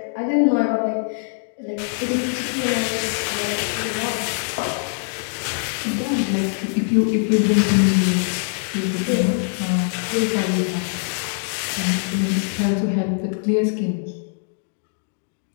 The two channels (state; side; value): silent; right; 64 dB below the other